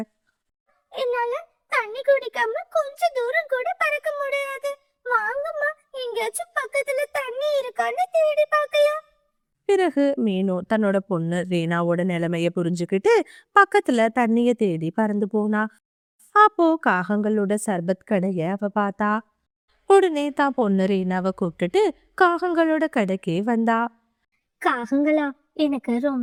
என்னால தண்ணி குடிக்காம கொஞ்ச தூரம் கூட பறக்க முடியாது. வாங்கம்மா, எங்கேயாச்சும் பக்கத்துல தண்ணி இருக்கான்னு தேடி பார்க்கலாம். பிறகு மீனு தன்னோட பொண்ணு ரீனாவோட நிலைமைய புரிஞ்சுக்கிட்டு பக்கத்துல தண்ணிய தேடி பறந்து போனா. அப்போ காகங்களோட சர்பத் கடைய அவ பார்த்தா. உடனே தான் பொண்ணு ரீனாவை கூப்பிட்டுட்டு காகங்களோட கடைக்கே வந்தா. காகங்களா, எனக்கு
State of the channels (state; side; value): identical; both; correlation 1.00